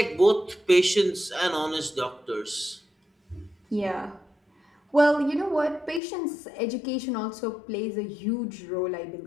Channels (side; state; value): right; drops out; at 6.0 s